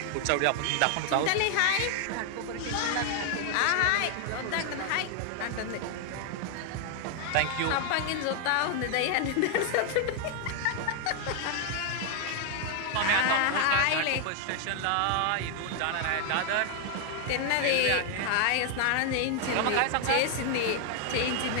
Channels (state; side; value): different; both; correlation 0.00